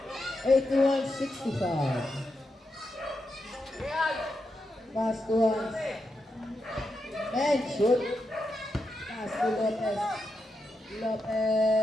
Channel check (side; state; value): both; normal; correlation 0.86